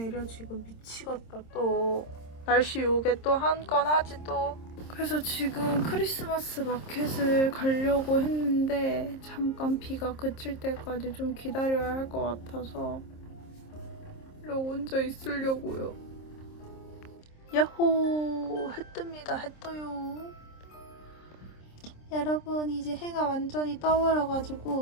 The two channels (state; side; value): late; right; 26 ms